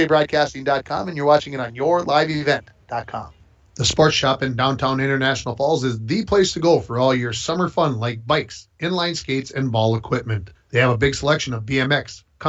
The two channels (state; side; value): identical; both; correlation 1.00